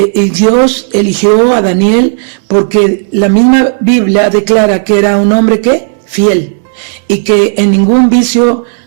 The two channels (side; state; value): left; silent; digital silence